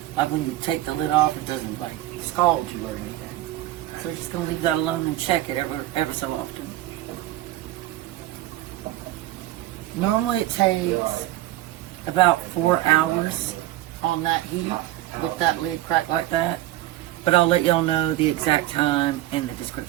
like when you take the lid off, it doesn't like scald you or anything. So we're just going to leave that alone and check it ever so often. Normally it takes about 4 hours on that heat with that lid cracked like that. But I'll let y'all know the exact time in the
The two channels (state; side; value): quieter; left; 15.5 dB